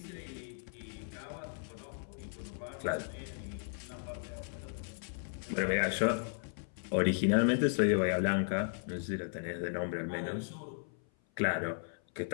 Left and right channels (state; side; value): silent; right; 54 dB below the other